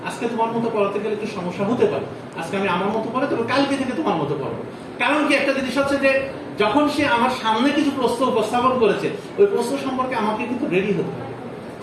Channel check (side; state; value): both; identical; correlation 1.00